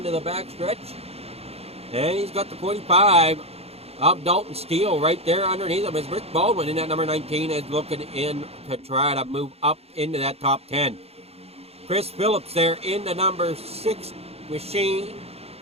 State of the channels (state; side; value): late; left; 0.29 ms